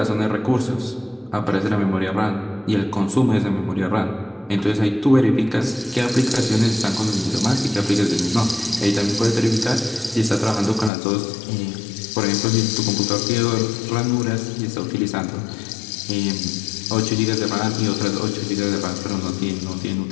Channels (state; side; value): drops out; right; at 10.9 s